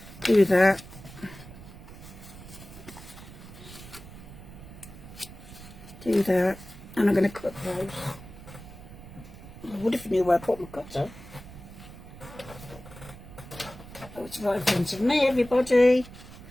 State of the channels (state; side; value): noise; right; rumble, 16 dB below the sound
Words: do that. Do that, and I'm going to cut those. I would if I knew where I put my cutter. Oh, it's right in front of me, everybody.